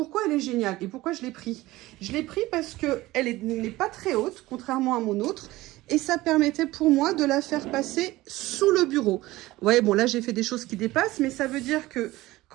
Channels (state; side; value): quieter; left; 18.2 dB